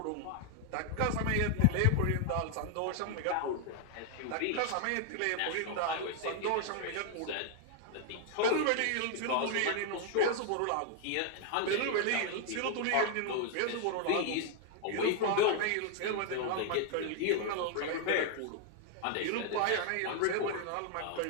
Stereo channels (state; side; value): different; both; correlation 0.00